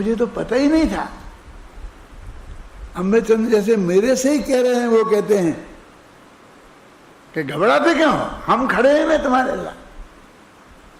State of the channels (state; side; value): identical; both; correlation 1.00